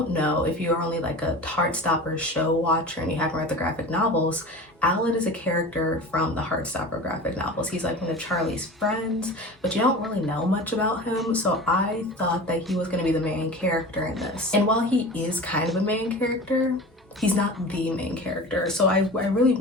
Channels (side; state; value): both; normal; correlation 0.34